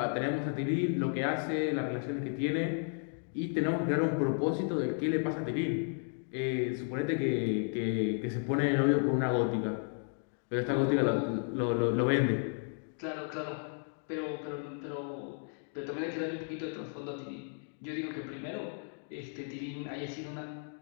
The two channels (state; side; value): silent; right; 55 dB below the other